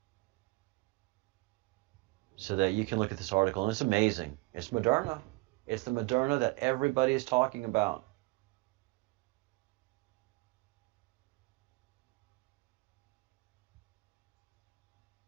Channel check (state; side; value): quieter; left; 24.1 dB